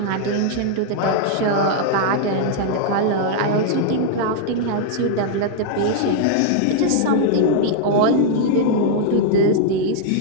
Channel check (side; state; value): both; different; correlation -0.01